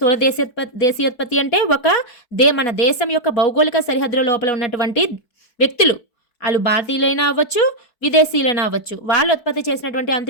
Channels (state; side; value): late; right; 4.6 ms